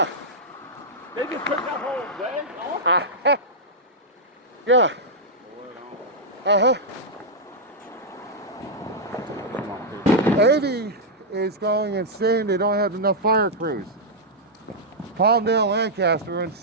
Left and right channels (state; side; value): normal; both; correlation -0.06